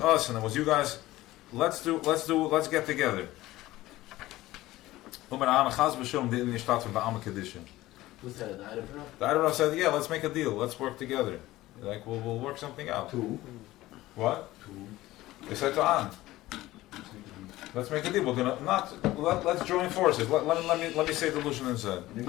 and it was you guys. Let's get together. Was that an item? The Erev said, yeah, let's make a deal. Let's work together. Like we'll work something out. Two. What? They said to An, let's make a deal. We're gonna let's join forces. Let me say the Lushan inside.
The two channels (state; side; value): quieter; right; 17.0 dB